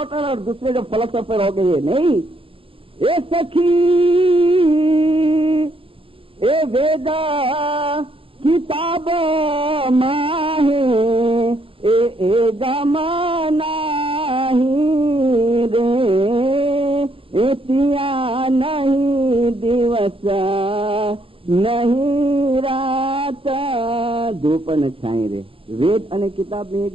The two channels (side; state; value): left; late; 0.26 ms